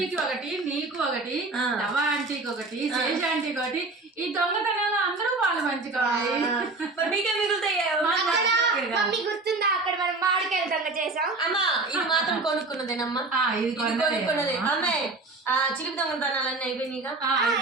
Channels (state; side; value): quieter; left; 3.4 dB